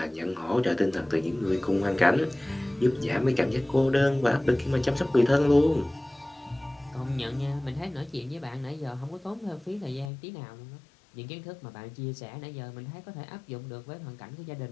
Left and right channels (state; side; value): drops out; right; at 10.1 s